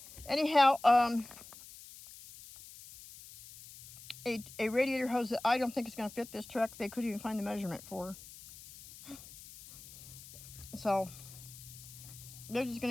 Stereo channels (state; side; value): noise; left; hiss, 17 dB below the sound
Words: Anyhow, a radiator hose that I don't think is going to fit this truck, they couldn't even find the measurement for. So, they're just